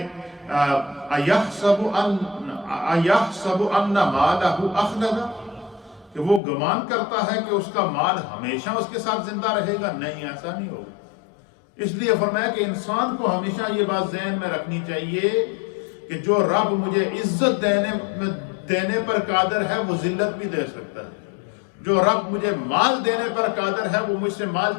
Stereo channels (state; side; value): drops out; right; at 6.4 s